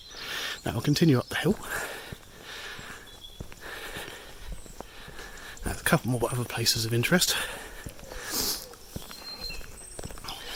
Now I'll continue up the hill. There's a couple more other places of interest.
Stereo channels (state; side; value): identical; both; correlation 1.00